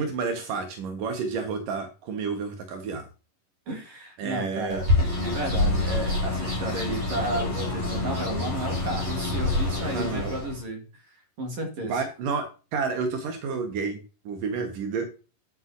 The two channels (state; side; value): late; left; 11 ms